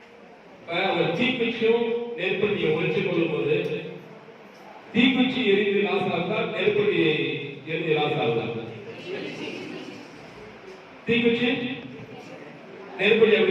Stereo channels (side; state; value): both; identical; correlation 1.00